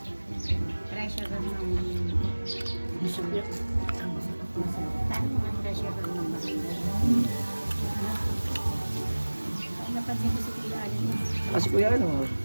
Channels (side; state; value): both; inverted; correlation -1.00